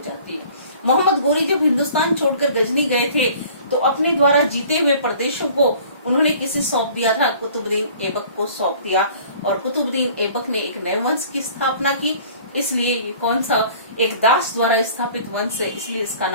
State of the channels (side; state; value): both; inverted; correlation -0.50